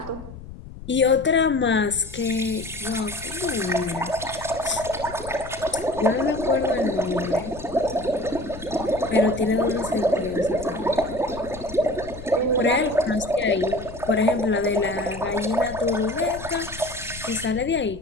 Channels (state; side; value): noise; left; rumble, 14 dB below the sound